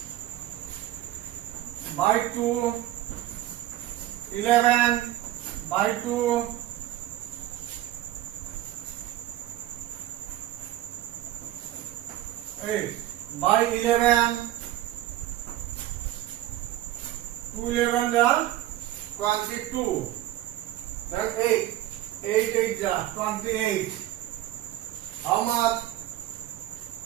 by 2, 11, by 2, 8, by 11, 2 11 are 22, then 8, 8 8 are 28. How much?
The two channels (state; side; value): quieter; left; 14.3 dB